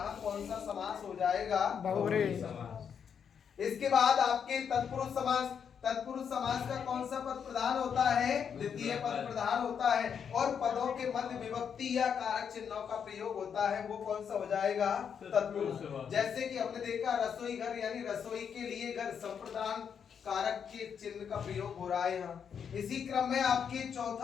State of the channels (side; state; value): right; quieter; 7.4 dB